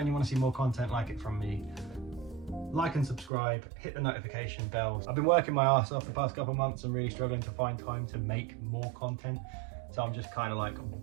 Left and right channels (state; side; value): drops out; left; at 3.3 s